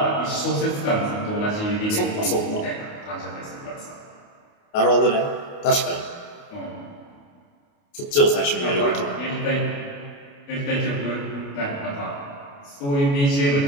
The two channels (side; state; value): right; late; 28 ms